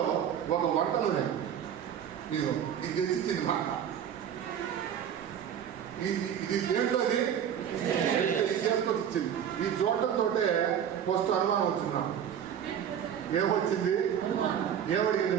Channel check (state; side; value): quieter; left; 9.0 dB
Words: ఒక వంట నూనె ఇది తెచ్చిచ్చింది మాట. ఇది దేంట్లోది చేసుకొచ్చింది. ఈ చూడటంతో ఫస్ట్ అనుమానం వచ్చింది నాకు. ఏమొచ్చింది? ఏమడిగింది